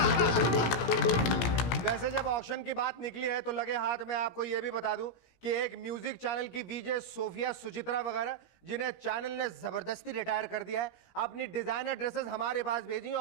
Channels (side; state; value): right; late; 17 ms